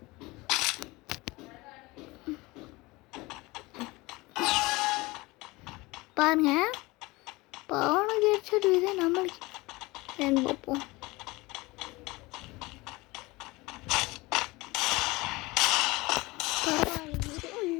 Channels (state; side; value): quieter; right; 22.4 dB